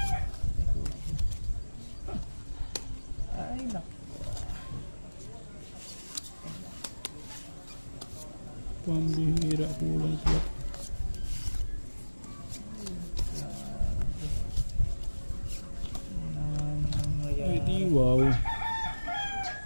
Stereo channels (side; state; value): both; inverted; correlation -1.00